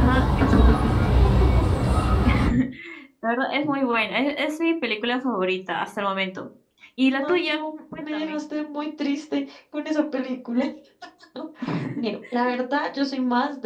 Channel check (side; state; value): both; identical; correlation 1.00